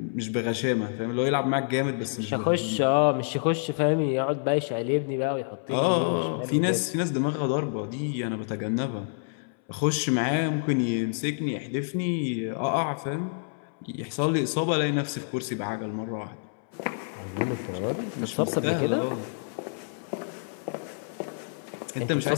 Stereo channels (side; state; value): right; silent; 59 dB below the other